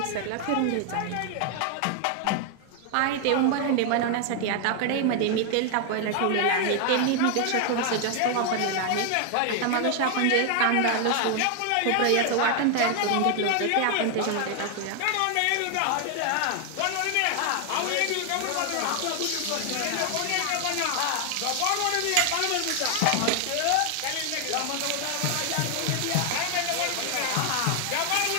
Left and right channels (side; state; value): both; different; correlation 0.00